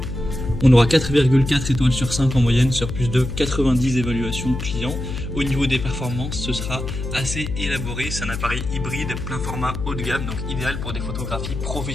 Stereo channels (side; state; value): left; noise; hum, 5 dB below the sound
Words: On aura 4,4 étoiles sur 5 en moyenne sur plus de 90 évaluations clients. Au niveau des performances, ce sera assez élaboré. C'est un appareil hybride plein format haut de gamme, donc idéal pour des photographies